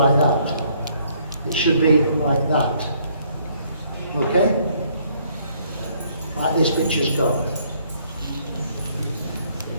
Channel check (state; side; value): inverted; both; correlation -0.65